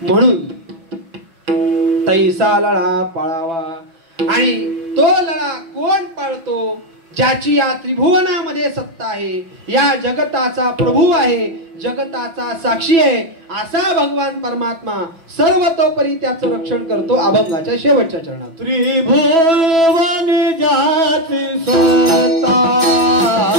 तैसा लळा पाळावा. आणि तो लळा कोण पाळतो? ज्याची या त्रिभुवनामध्ये सत्ता आहे, या जगताचा प्रभू आहे, जगताचा साक्षी आहे, असा भगवान परमात्मा सर्वतोपरी त्याचं रक्षण करतो. अभंगाच्या शेवटच्या चरणात त्रिभुवन ज्याची सत्ता,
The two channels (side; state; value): left; late; 6.0 ms